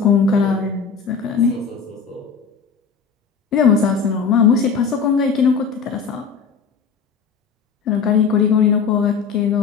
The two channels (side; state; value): right; quieter; 5.9 dB